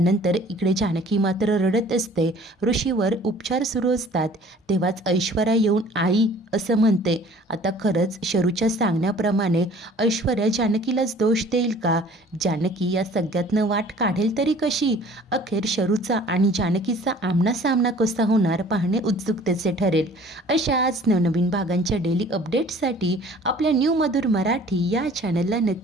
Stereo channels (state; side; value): normal; both; correlation 0.51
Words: इकडे जानकी मात्र रडत असते. ऋषीवर उपचार सुरू असतात. तेव्हाच ऐश्वर्या येऊन आई असं म्हणते. आता खरंच शरूच्या सांगण्याप्रमाणे ऐश्वर्या जानकीलाच दोष देईल का? जानकी या सगळ्यातनं वाट काढेल तरी कशी? अखेर शरूचा आणि जानकीचा आमनासामना कसा होणार पाहणे उत्सुकतेचे ठरेल. अशाच नवनवीन भागांच्या डेली अपडेट्ससाठी आपल्या न्यू मधुर मराठी या चॅनलला